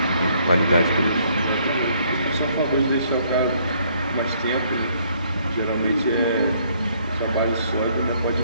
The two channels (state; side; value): inverted; both; correlation -0.65